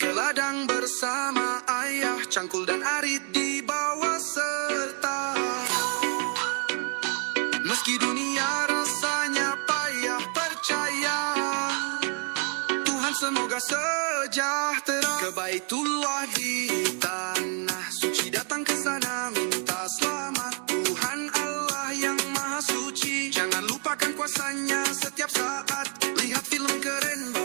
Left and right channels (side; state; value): left; quieter; 38.1 dB